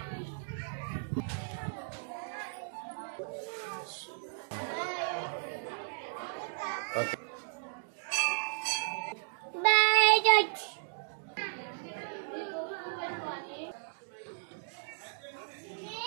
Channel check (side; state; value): left; silent; digital silence